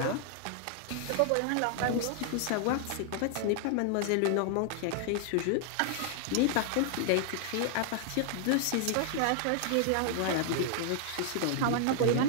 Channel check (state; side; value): different; both; correlation 0.00